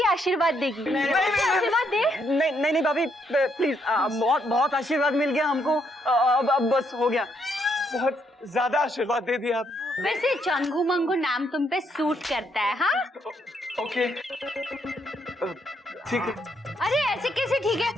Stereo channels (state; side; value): normal; both; correlation 0.74